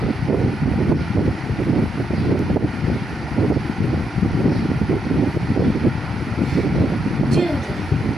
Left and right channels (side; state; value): both; normal; correlation 0.80